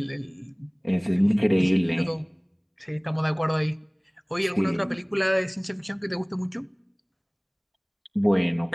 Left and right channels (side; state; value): both; identical; correlation 1.00